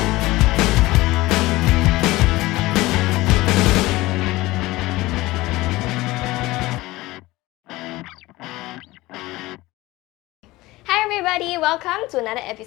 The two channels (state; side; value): quieter; right; 19.4 dB